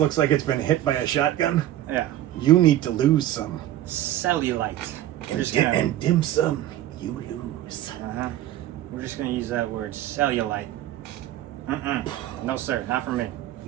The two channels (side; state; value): left; quieter; 13.4 dB